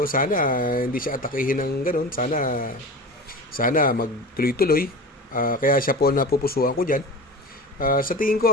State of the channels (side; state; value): both; normal; correlation 0.32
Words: sana hindi siya atakihin ng ganun, sana magtuloy-tuloy, kaya siya po napupusuan ko dyan. Sa tingin ko